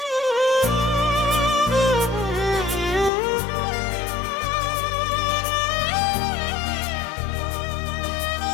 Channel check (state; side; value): drops out; right; at 3.1 s